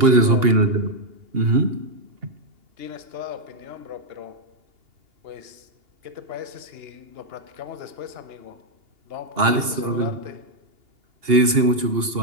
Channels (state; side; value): late; left; 2.8 ms